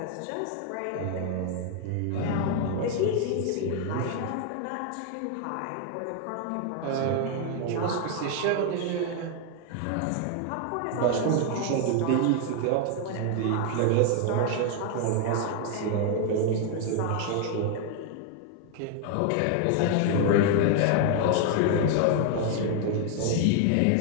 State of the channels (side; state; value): both; different; correlation 0.00